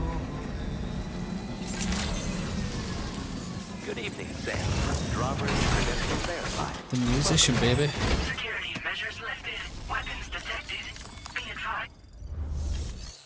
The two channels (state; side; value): identical; both; correlation 1.00